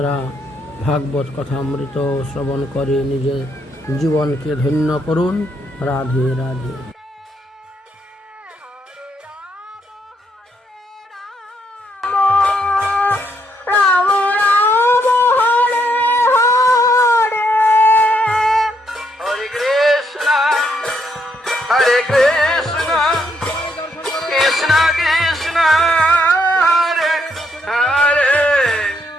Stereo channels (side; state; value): both; normal; correlation 0.75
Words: ভাগবত কথামৃত শ্রবণ করে নিজের জীবনকে ধন্য করুন। Radhe Radhe. Hare Krishna, Krishna Krishna, Hare Hare,